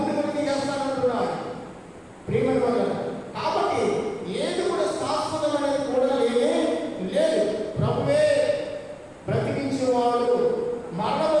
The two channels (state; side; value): identical; both; correlation 1.00